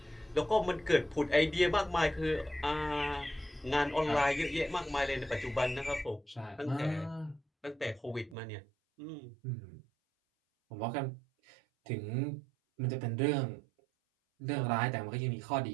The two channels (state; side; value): drops out; left; at 8.3 s